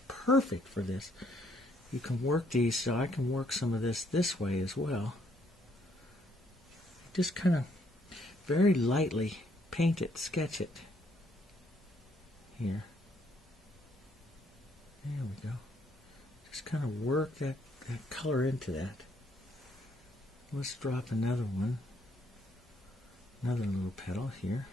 perfect for this. You can work these, so I can work some of this way as well. Just kind of very lightly paint it, sketch it. Here. There we go. Just kind of work that color into that. Let's drop another one. Another little petal here.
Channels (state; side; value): normal; both; correlation 0.69